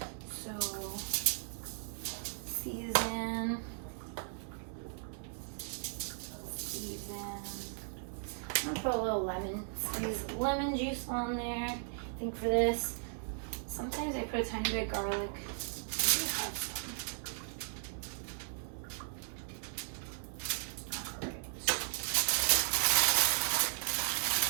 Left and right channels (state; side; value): silent; left; digital silence